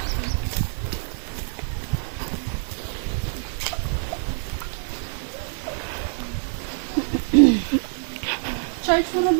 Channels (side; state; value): left; silent; digital silence